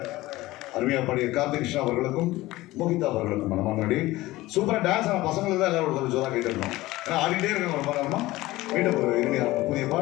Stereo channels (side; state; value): right; quieter; 18.3 dB